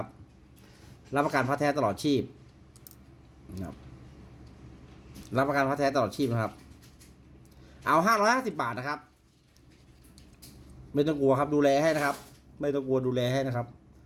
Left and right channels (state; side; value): identical; both; correlation 1.00